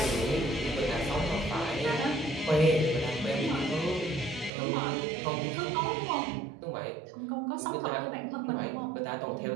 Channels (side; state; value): left; drops out; at 4.5 s